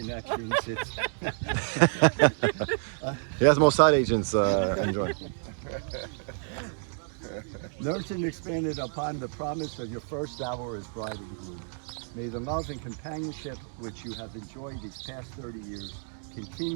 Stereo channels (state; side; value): silent; left; 58 dB below the other